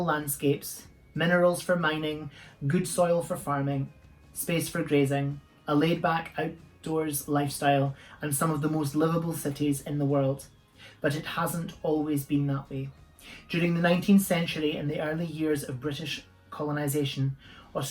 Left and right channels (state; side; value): identical; both; correlation 1.00